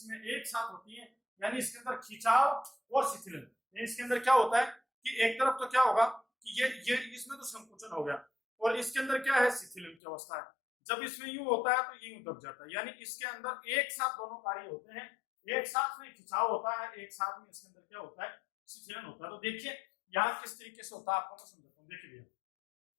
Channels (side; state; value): right; drops out; at 10.0 s